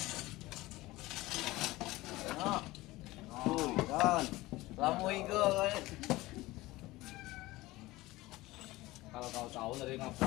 Kan. Lamu igo kan. Kalau kau tahu dari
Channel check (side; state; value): right; quieter; 19.2 dB